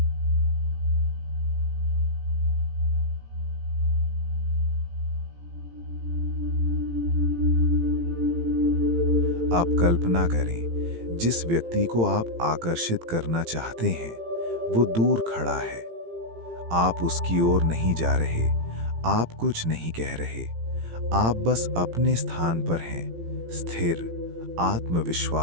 आप कल्पना करें, जिस व्यक्ति को आप आकर्षित करना चाहते हैं वो दूर खड़ा है। आप उसकी ओर नहीं जा रहे, आप कुछ नहीं कह रहे, आप बस अपने स्थान पर हैं, स्थिर,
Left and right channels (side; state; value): left; late; 18 ms